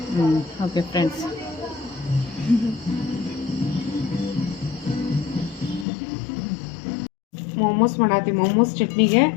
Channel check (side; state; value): right; drops out; at 5.9 s